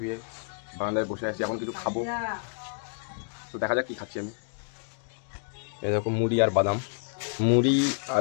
বারান্দায় বসে আছি। এখন কিছু খাবো, তো দেখা যাক কি খাচ্ছি আমি। এরকম মুড়ি আর বাদাম, মুড়ি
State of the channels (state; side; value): silent; right; 59 dB below the other